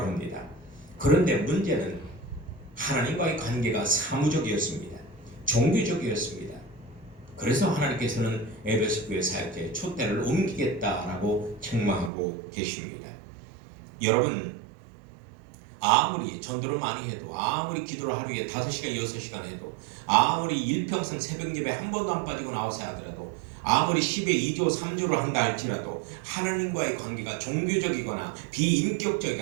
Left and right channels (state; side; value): drops out; left; at 12.1 s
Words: 합니다. 그런데 문제는 하나님과의 관계가 사무적이었습니다. 종교적이었습니다. 그래서 하나님께서는 에베소 교회 사역자의 촛대를 옮기겠다라고 책망하고 계십니다. 여러분, 아무리 전도를 많이 해도, 아무리 기도를 하루에 5시간, 6시간 해도, 아무리 일평생 새벽 예배 한 번도 안 빠지고 나와서 하더라도, 아무리 10에 2조, 3조를 한다 할지라도 하나님과의 관계가 종교적이거나